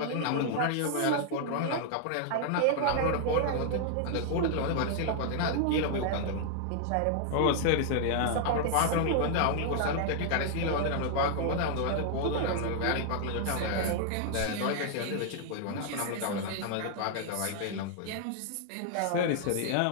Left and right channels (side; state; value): both; different; correlation 0.00